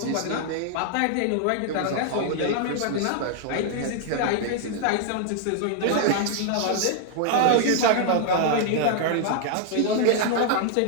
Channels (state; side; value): different; both; correlation 0.00